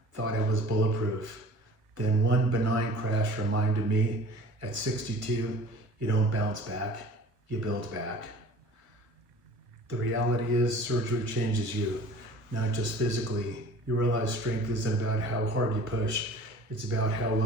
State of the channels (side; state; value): left; late; 1.4 ms